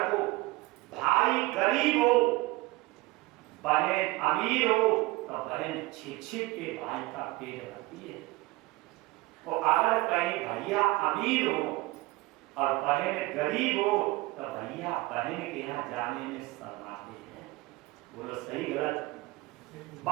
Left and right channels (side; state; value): left; quieter; 20.6 dB